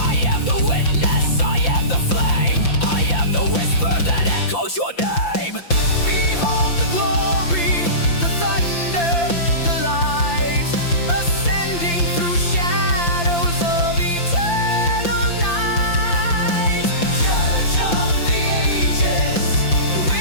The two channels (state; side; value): late; right; 5.8 ms